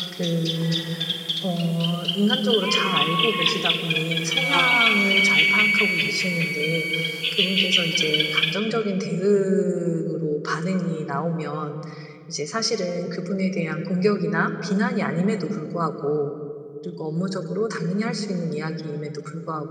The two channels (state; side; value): identical; both; correlation 1.00